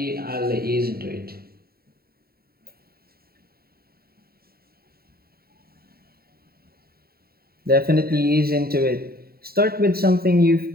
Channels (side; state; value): left; late; 0.44 ms